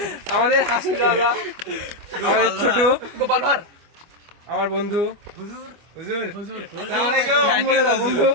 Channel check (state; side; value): late; left; 25 ms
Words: হাসির রাজা, আমাদের ছোট গোপাল ভার, আমার বন্ধু